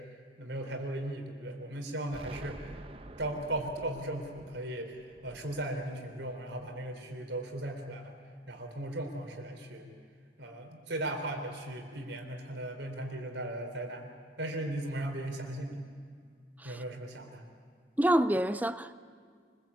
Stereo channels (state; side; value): normal; both; correlation 0.53